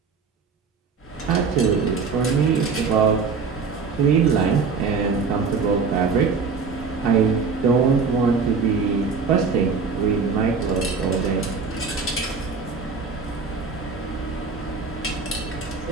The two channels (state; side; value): quieter; left; 5.0 dB